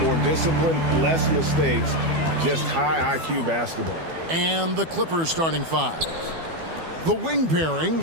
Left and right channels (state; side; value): late; left; 12 ms